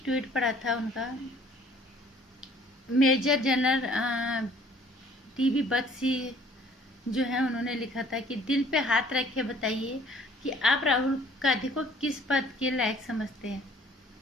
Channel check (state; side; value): normal; both; correlation 0.56